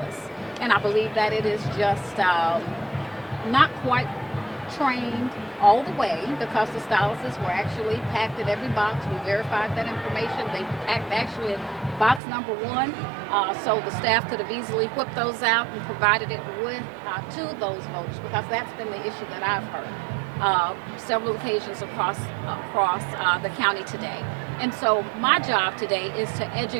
And I believe that it is just not quite trained all the way, because the styluses were actually packed in every box. We verified that information. They packed actually in box number 1, so the staff could have easily whipped those out and provided it with to those voters, because that's been the issue that I've heard several occasions across the county today. And so my job today is to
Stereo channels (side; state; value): left; drops out; at 12.2 s